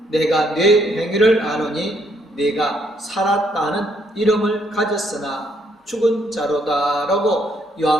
내가 네 행위를 아노니 네가 살았다는 이름을 가졌으나 죽은 자로다 라고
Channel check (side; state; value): both; normal; correlation 0.71